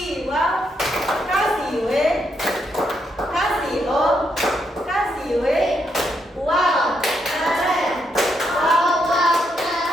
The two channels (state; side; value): normal; both; correlation 0.78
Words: wow, kasih w, kasih o, kasih w. Wow, keren. Wow, wow,